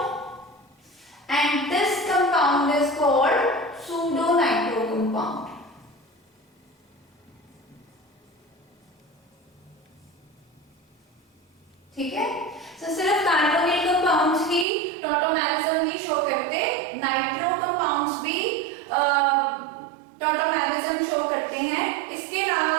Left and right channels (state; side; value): drops out; left; at 14.7 s